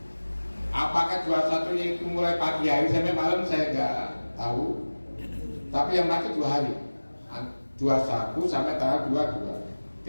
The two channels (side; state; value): both; inverted; correlation -1.00